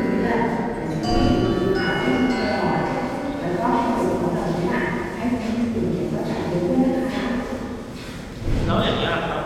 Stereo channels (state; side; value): identical; both; correlation 1.00